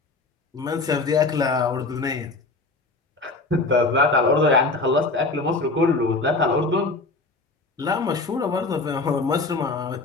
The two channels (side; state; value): right; quieter; 3.5 dB